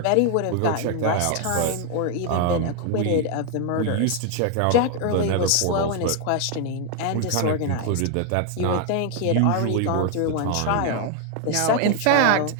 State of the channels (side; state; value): both; different; correlation 0.00